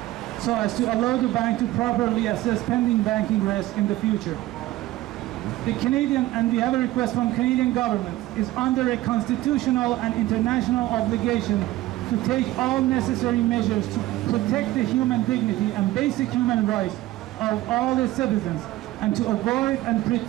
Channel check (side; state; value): left; quieter; 16.5 dB